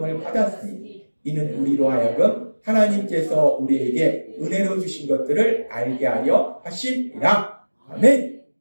받았으니 이는 우리로 하여금 하나님께서 우리에게 은혜로 주신 것들을 알게 하려 하심이라. 아멘.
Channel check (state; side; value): inverted; both; correlation -1.00